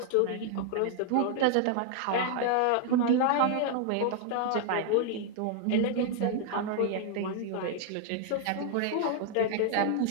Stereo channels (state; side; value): different; both; correlation 0.00